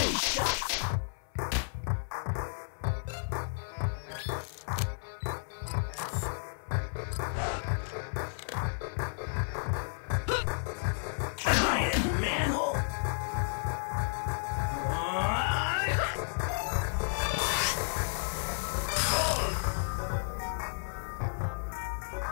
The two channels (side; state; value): right; silent; 56 dB below the other